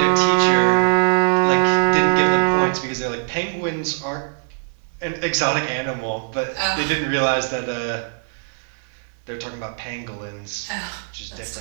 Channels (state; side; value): silent; left; 63 dB below the other